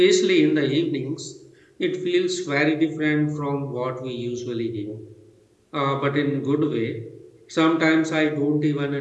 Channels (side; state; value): both; identical; correlation 1.00